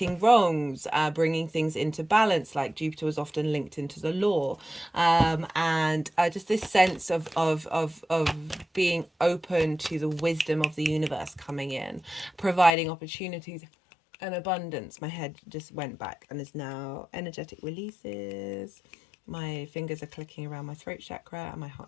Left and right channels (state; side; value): drops out; right; at 12.7 s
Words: wrongs, bringing things into balance, like Jupiter was often linked into the law, and just this sense of being open to the wisdom of the universe coming in, providing opportunities and abundance. My head just went back and is now energetic releases. My fingers are clicking around my throat chakra and my heart